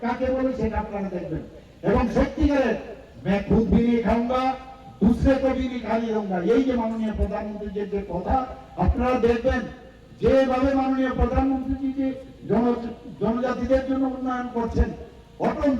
কাকে বলে সেটা আপনারা দেখবেন, এবং সত্যিকারের मैं खुद भी नहीं खाऊंगा, दूसरे को भी नहीं खाने दूंगा, এই যে মাননীয় প্রধানমন্ত্রীর যে কথা আপনারা দেখবেন, যেভাবে মাননীয় প্রধানমন্ত্রী যে জনজাতিদের জন্য উন্নয়ন করছেন।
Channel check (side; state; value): both; identical; correlation 1.00